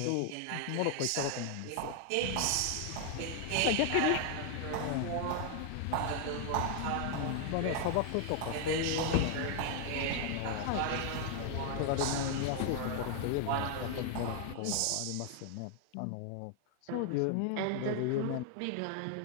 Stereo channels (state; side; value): different; both; correlation 0.00